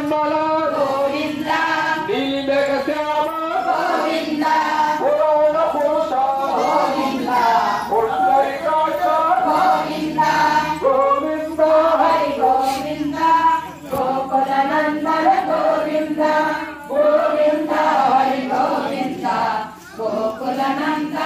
ಗೋವಿಂದ ನೀಲಕ ಶ್ಯಾಮ ಗೋವಿಂದ ಪುರಾಣ ಪುರುಷ ಗೋವಿಂದ ಪುಂಡರೀಕಾಕ್ಷ ಗೋವಿಂದ ಗೋವಿಂದ ಹರಿ ಗೋವಿಂದ ಗೋಕುಲ ನಂದನ ಗೋವಿಂದ ಗೋವಿಂದ ಹರಿ ಗೋವಿಂದ ಗೋಕುಲ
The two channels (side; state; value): both; identical; correlation 1.00